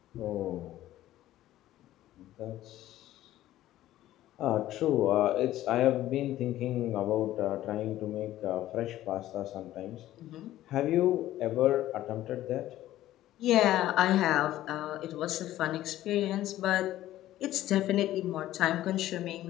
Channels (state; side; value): quieter; right; 14.2 dB